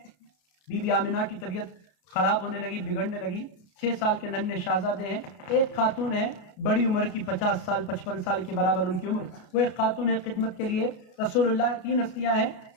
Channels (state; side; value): late; right; 33 ms